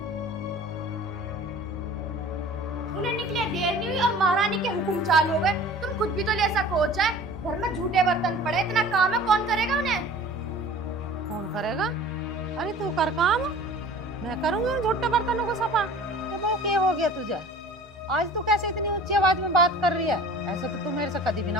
उन्हें निकले देर नहीं हुई और महारानी के हुक्म चालू हो गए। तुम खुद भी तो ले सको चाहे, घर में झूठे बर्तन पड़े, इतना काम है, कौन करेगा उन्हें? कौन करेगा? अरे तू कर काम, मैं करूंगी उन झूठे बर्तनों को सफा। ये बहू क्या हो गया तुझे? आज तू कैसे इतनी ऊंची आवाज में बात कर रही है? ऐसे तो तू मेरे से कभी भी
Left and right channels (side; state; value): both; normal; correlation 0.44